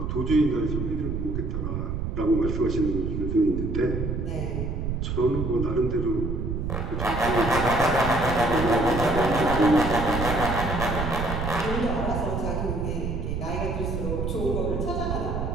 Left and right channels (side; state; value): right; noise; rumble, 2 dB below the sound